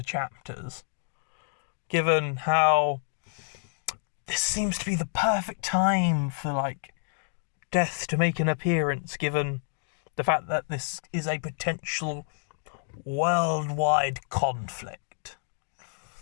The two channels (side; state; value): right; silent; digital silence